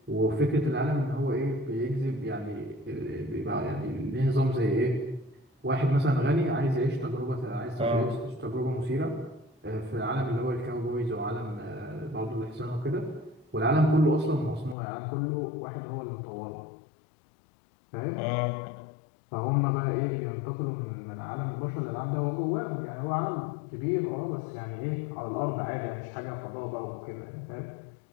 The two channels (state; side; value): drops out; right; at 14.8 s